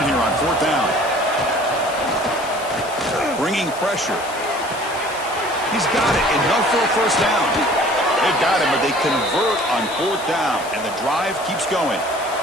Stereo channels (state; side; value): noise; left; hiss, 15 dB below the sound